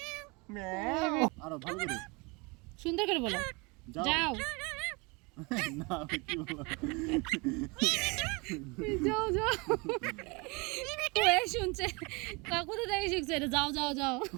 ম্যাও আরো ভালো করে সুন্দর করে বলো যাও না কি বলো যাও যাও ওই শুনছে কাকুতে দেখে শিখছে এটা যাও যাও যাও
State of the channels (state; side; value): quieter; left; 28.0 dB